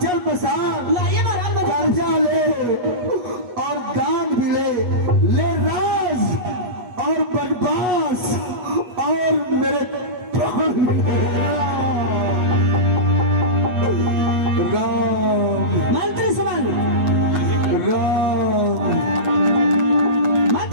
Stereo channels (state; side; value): late; left; 8.2 ms